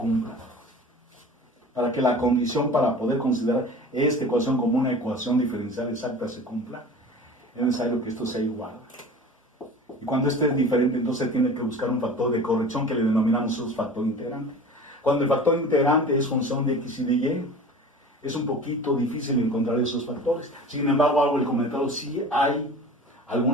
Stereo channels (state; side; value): normal; both; correlation 0.39